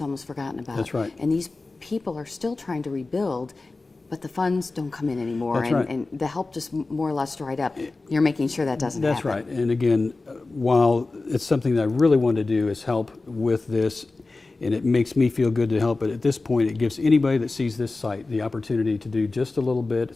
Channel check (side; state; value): right; quieter; 3.5 dB